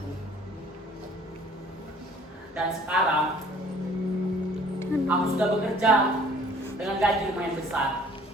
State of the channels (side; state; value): both; normal; correlation 0.54